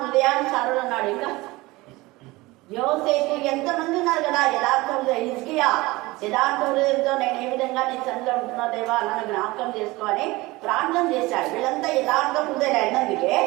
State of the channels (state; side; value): quieter; left; 21.2 dB